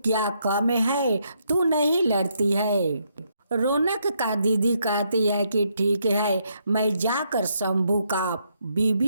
क्या कम है, तू नहीं लड़ती है। रौनक का दीदी कहती है कि ठीक है, मैं जाकर शंभू का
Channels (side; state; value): both; inverted; correlation -0.76